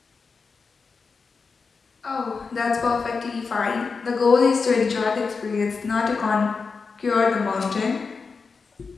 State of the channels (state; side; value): quieter; right; 4.8 dB